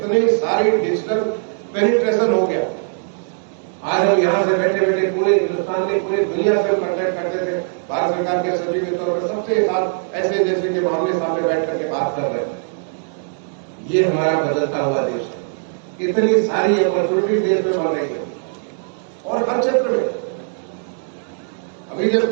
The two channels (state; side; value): silent; left; digital silence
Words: सारी डिजिटल पेनिट्रेशन हो गया। आज हम यहां से बैठे बैठे पूरे हिंदुस्तान में, पूरी दुनिया से कांटेक्ट करते थे। भारत सरकार के सचिव के तौर पर सबसे साथ ऐसे जैसे के मामले सामने बैठ करके बात कर रहे हैं। ये हमारा बदलता हुआ देश है। कितनी सारी अपॉर्चुनिटी देश में बन रही है और हर क्षेत्र में। अभी